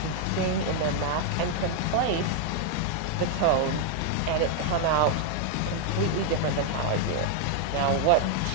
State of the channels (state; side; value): different; both; correlation 0.00